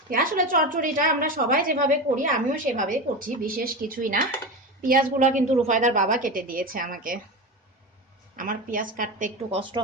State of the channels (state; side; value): normal; both; correlation 0.22